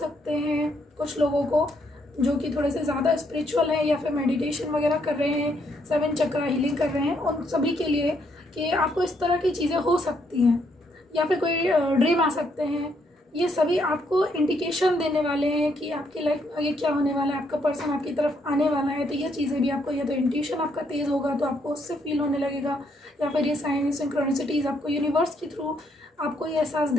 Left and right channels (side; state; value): both; normal; correlation 0.73